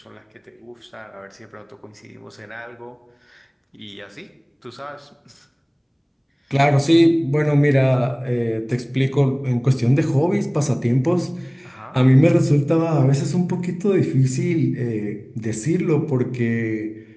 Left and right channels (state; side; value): identical; both; correlation 1.00